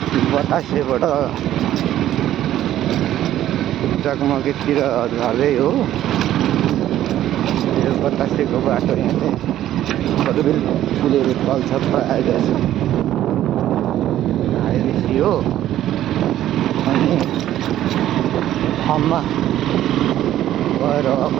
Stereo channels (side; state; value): left; quieter; 12.6 dB